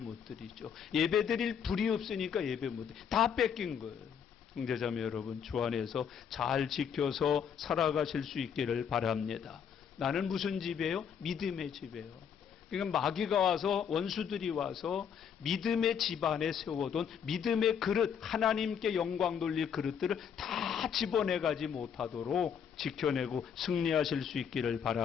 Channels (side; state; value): right; quieter; 7.7 dB